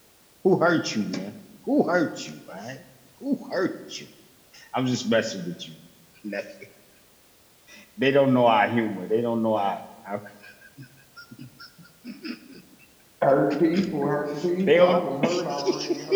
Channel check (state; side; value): identical; both; correlation 1.00